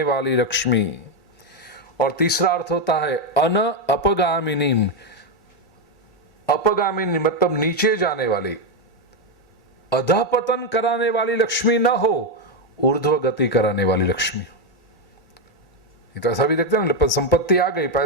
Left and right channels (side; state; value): both; normal; correlation 0.05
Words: वाली लक्ष्मी। और तीसरा अर्थ होता है अन अपगामिनीम। अपगामिनी मतलब नीचे जाने वाली, अधपतन कराने वाली लक्ष्मी ना हो, ऊर्ध्व गति कराने वाली लक्ष्मी। ये तो ऐसा भी देखते हैं ना, संपत्ति आ गई,